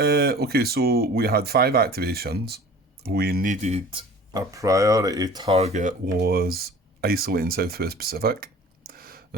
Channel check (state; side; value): normal; both; correlation 0.44